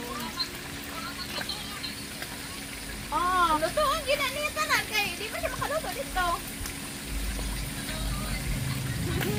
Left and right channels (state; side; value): identical; both; correlation 1.00